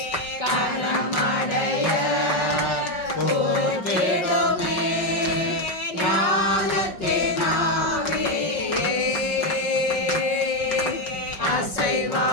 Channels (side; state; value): right; late; 5.5 ms